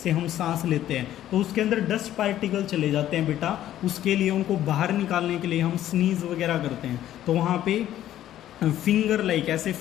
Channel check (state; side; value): quieter; right; 12.4 dB